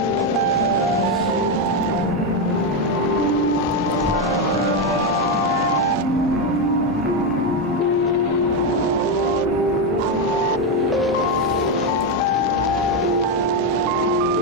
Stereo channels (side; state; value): both; normal; correlation 0.07